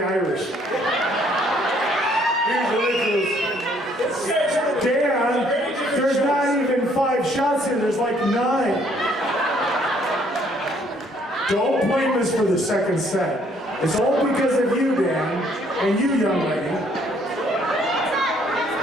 Irish. Here's the listeners. Dan, there's not even 5 shots here, there's like 9. Don't blame us for the second set. It's all because of you, Dan, and you, young lady.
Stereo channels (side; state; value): both; normal; correlation 0.64